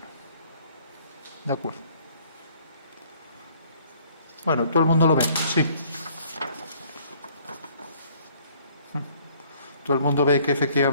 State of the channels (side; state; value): both; inverted; correlation -0.60